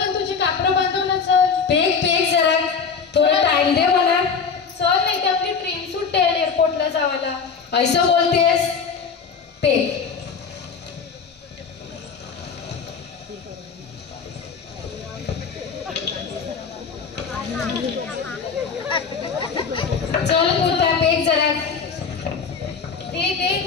तुझे कापडं बांधव ना. चल पेक जरा थोडा टाइम दे मला. चल नाही तर आपली ट्रेन सुटते एअरपोर्टला जावाला. ऐसं बोलतेस? पेक चल पुता पेक जरा दे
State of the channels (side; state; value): right; quieter; 5.7 dB